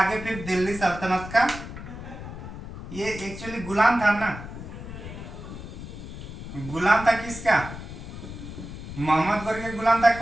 फिर दिल्ली सल्तनत का, ये एक्चुअली गुलाम था ना, गुलाम था किसका? मोहम्मद गौरी के गुलाम था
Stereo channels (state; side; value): noise; left; rumble, 11 dB below the sound